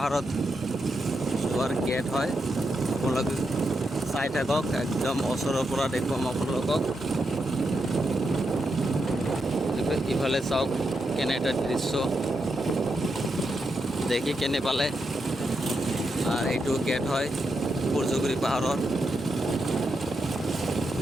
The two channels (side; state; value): both; normal; correlation 0.84